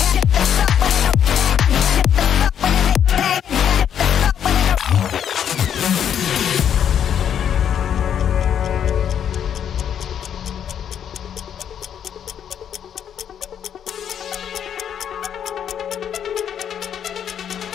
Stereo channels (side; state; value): right; quieter; 8.9 dB